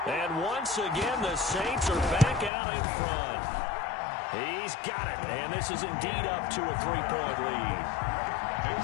And once again, the Saints are back out in front. He's got it. And this is indeed up to a 3-point lead. Makes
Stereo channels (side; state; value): right; drops out; at 2.5 s